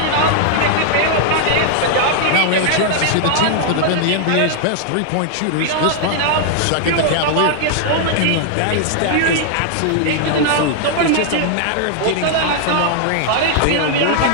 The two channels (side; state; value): both; different; correlation 0.00